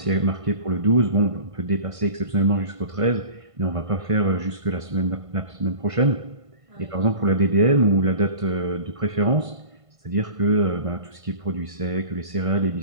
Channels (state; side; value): late; left; 1.5 ms